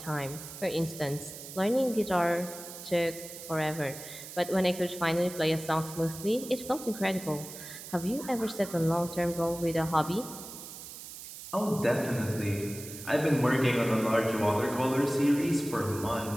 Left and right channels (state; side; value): noise; right; hiss, 12 dB below the sound